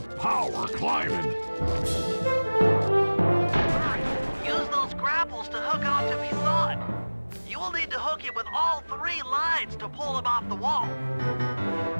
power climbing. Use those grapples to hook onto Misan. You will need to hook it with all 3 lines to pull him off the wall.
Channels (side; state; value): both; inverted; correlation -1.00